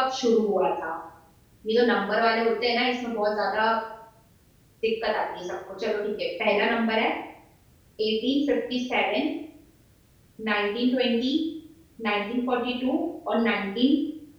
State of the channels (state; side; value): identical; both; correlation 1.00